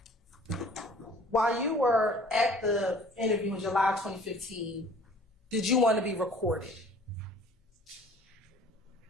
while you were at the interview in July 2015, did you want to be recorded?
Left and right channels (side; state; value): both; normal; correlation 0.51